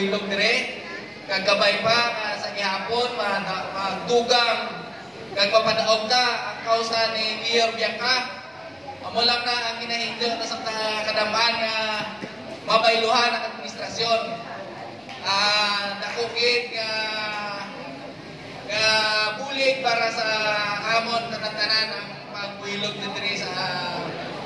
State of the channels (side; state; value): both; identical; correlation 1.00